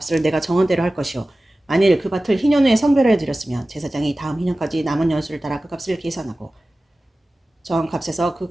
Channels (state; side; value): normal; both; correlation 0.96